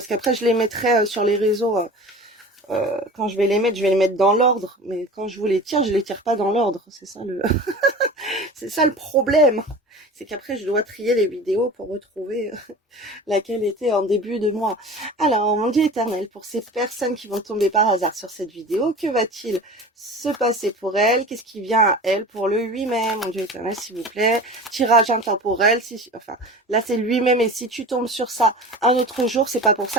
qu'après, je les mettrai sur les réseaux. Quand je vais les mettre dans l'ordre. Mais quand je vous je les tire pas dans l'ordre. C'est ça le... c'est ça le problème. C'est qu'après, je dois trier les vidéos pour retrouver laquelle était en début de mois. Alors, mon Dieu éternel, pour ces personnes qui vont tomber par hasard sur cette vidéo, que va-t-il se passer pour elles? Qu'est-ce qui vient à elles pour le 8 mai? Mon Dieu éternel, s'il vous plaît. Tirage intemporel. Enfin, là, c'est le 8 mai, mais si tu tombes sur ça un autre jour, c'est pas pour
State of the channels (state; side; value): normal; both; correlation 0.36